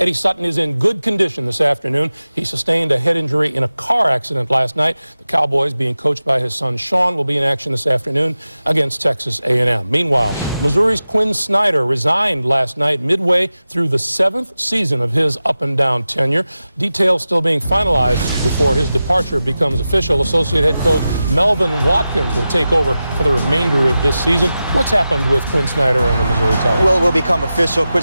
Sutton is in good condition this afternoon. He sustained a head injury in a car accident last night. The Cowboys, being coached by his son Sean, will be in action this afternoon against Texas A&M. Meanwhile, Missouri's Quinn Snyder resigned last night midway through the 7th season of his up-and-down tenure. Details still being finalized before his departure becomes official. Associate head coach Melvin Watkins will take over for the remainder of this season. What's happened with Quinn Snyder and the Missouri Tigers? Well, it will become official.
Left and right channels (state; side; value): inverted; both; correlation -0.94